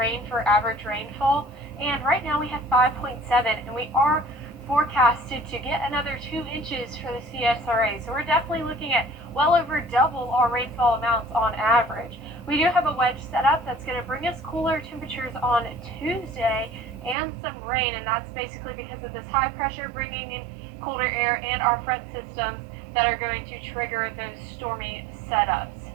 for average rainfall. And right now we have 5.7, and we are forecasted to get another 2 inches for the CSRA. So we're definitely looking at well over double our rainfall amounts on average. We do have a wedge set up that's going to bring us cooler temperatures on Tuesday and some rain, and that's basically because of this high pressure bringing in colder air and our front systems that are going to trigger those stormy setups.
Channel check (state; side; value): drops out; left; at 17.2 s